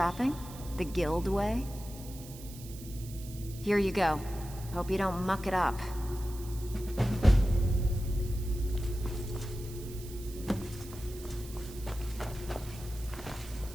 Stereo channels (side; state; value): right; noise; hiss, 16 dB below the sound